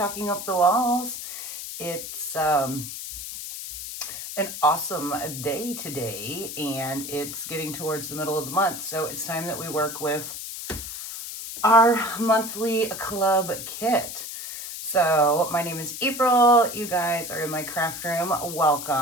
Up the Walls. It's an awesome day today, and it's getting towards the middle of the month, so it's time that we work with our monthly club kit. So my name is April. You guys are in my craft room.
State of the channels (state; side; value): noise; left; hiss, 8 dB below the sound